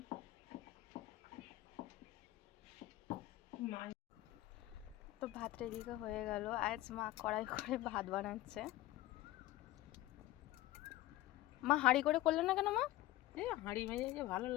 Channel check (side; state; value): right; quieter; 16.3 dB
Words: তো ভাত এদিকে হয়ে গেল। আজ মা কড়াই করে ভাত বানাচ্ছে। মা হাঁড়ি করে করলে না কেন মা? এই হাঁড়ি ভেজে যে ভালো